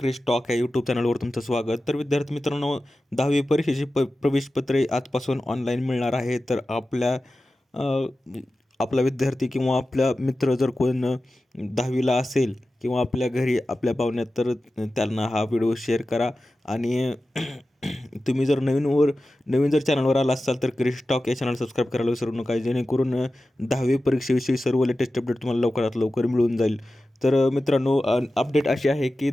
टॉक या यूट्यूब चॅनलवर तुमचं स्वागत. तर विद्यार्थी मित्रांनो, 10वी परीक्षेची प्रवेशपत्रे आजपासून ऑनलाईन मिळणार आहे. तर अ, आपला विद्यार्थी किंवा आपला मित्र जर कोण 10वीला असेल किंवा आपल्या घरी आपल्या पाहुण्यात, तर त्यांना हा व्हिडिओ शेअर करा. आणि तुम्ही जर नवीन जर चॅनलवर आला असाल तर क्रिश टॉक या चॅनल सबस्क्राईब करायला विसरू नका, जेणेकरून 10वी परीक्षेविषयी सर्व लेटेस्ट अपडेट तुम्हाला लवकरात लवकर मिळून जाईल. तर मित्रांनो, अपडेट अशी आहे की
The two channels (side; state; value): both; normal; correlation 0.94